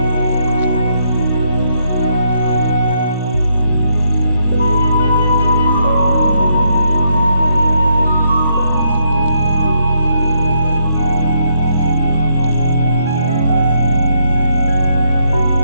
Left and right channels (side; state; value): both; inverted; correlation -0.75